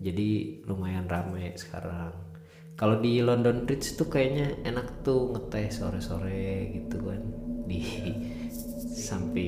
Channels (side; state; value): both; identical; correlation 1.00